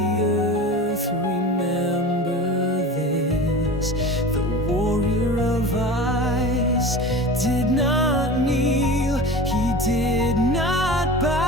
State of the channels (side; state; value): both; normal; correlation 0.33